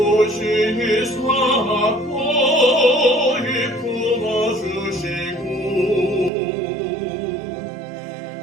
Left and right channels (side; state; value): left; drops out; at 6.3 s